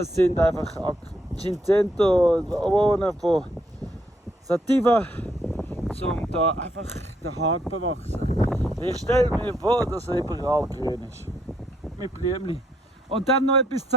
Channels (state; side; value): normal; both; correlation 0.73